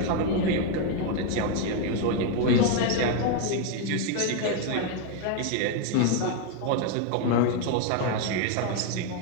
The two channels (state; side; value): different; both; correlation 0.01